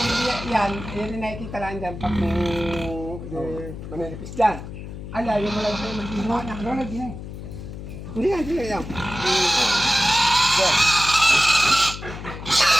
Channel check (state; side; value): noise; left; hum, 10 dB below the sound